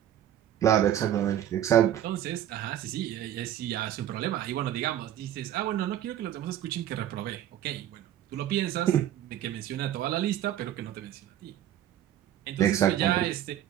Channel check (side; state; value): left; quieter; 11.4 dB